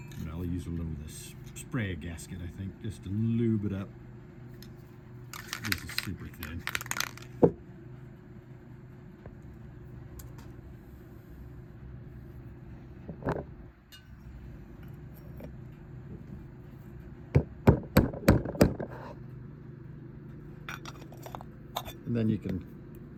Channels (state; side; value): identical; both; correlation 1.00